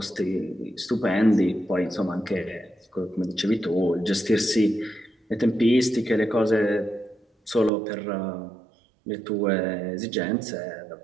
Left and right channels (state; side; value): drops out; left; at 7.7 s